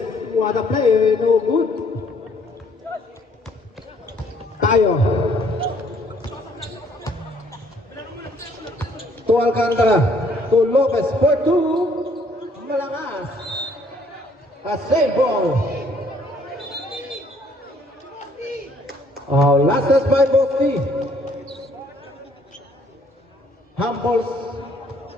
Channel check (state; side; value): normal; both; correlation 0.63